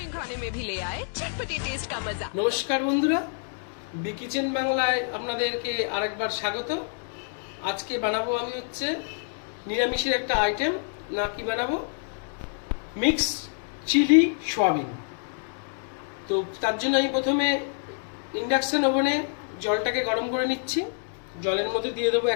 নমস্কার বন্ধুরা, বি কিচেন বাংলায় আপনাদেরকে আরেকবার স্বাগত। আজকে বানাবো আমি হচ্ছে নিরামিষের একটা আইটেম, না কি বানাবো, মিক্স চিলি সোয়াবিন। তো তার জন্য আমি প্রথমে ইন্ডাকশন ওভেনে জলটাকে গরম করে নিচ্ছি। জলের মধ্যে দিয়ে দেবো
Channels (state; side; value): silent; right; 59 dB below the other